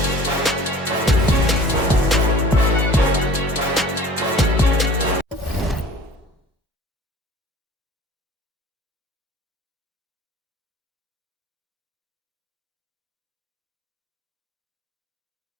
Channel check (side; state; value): both; normal; correlation 0.45